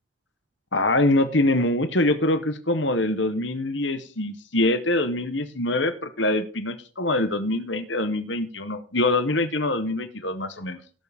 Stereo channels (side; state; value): both; normal; correlation 0.22